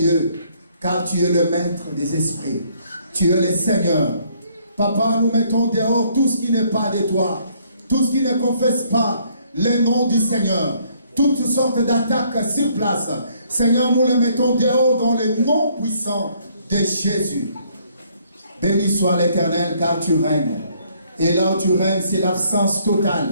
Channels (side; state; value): both; inverted; correlation -0.65